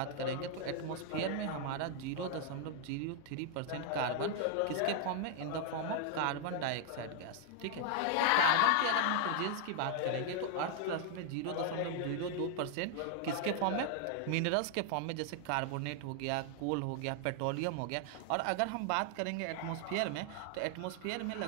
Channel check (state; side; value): different; both; correlation 0.00